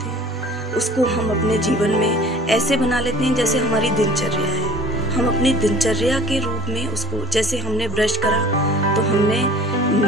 हैं। उसको हम अपने जीवन में ऐसे बना लेते हैं जैसे हमारी दिनचर्या है। हम अपनी दिनचर्या के रूप में उसको, जैसे हमने ब्रश करा तो हमने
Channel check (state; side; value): normal; both; correlation 0.48